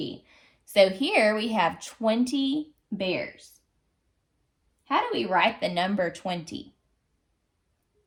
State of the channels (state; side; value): identical; both; correlation 1.00